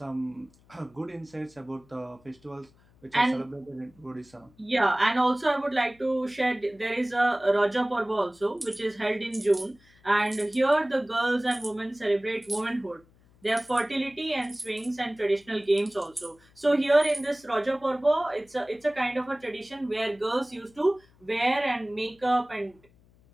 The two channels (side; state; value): left; noise; hum, 30 dB below the sound